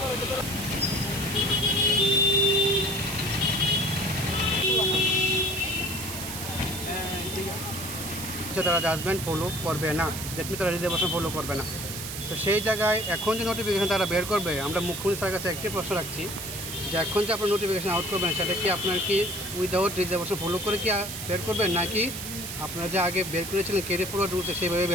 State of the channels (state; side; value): noise; right; hiss, 7 dB below the sound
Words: তারা জাজমেন্ট ফলো করবে না, দ্যাট মিনস তারা রিজার্ভেশন ফলো করবে না। তো সেই জায়গায় এখন যে নোটিফিকেশন তারা বের করবে, আমরা মুখ্যমন্ত্রী স্যারের কাছে একটি প্রশ্ন রাখছি যে এখন যে আপনার নোটিফিকেশন আউট করবেন সেটা কি আপনার কি উইদাউট রিজার্ভেশন ফলো করে কি বের করবেন, নাকি আপনারা যে আগে বের করেছিলেন ক্যারি ফরওয়ার্ড রুলসে সেইভাবে